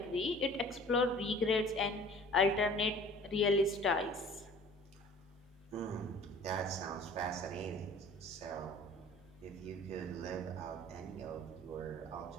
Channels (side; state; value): both; normal; correlation 0.47